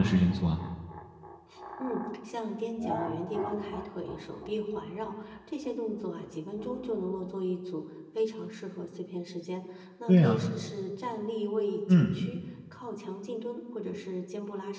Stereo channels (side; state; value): both; identical; correlation 1.00